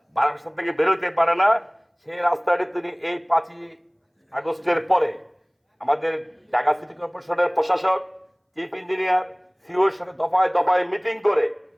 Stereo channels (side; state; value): both; identical; correlation 1.00